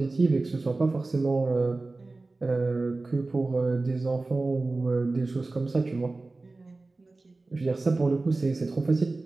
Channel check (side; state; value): left; quieter; 3.3 dB